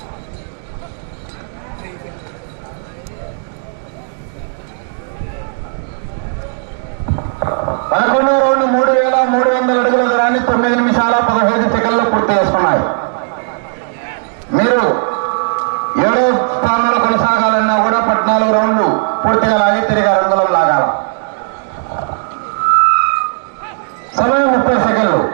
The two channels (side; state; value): left; silent; digital silence